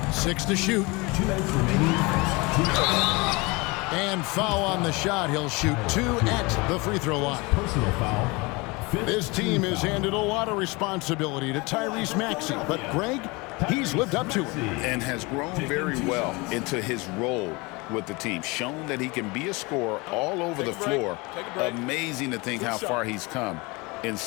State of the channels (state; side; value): quieter; right; 25.8 dB